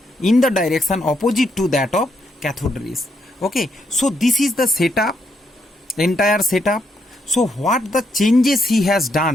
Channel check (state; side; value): normal; both; correlation 0.77